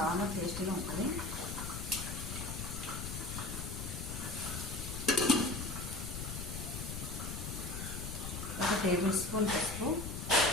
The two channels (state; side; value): noise; left; rumble, 6 dB below the sound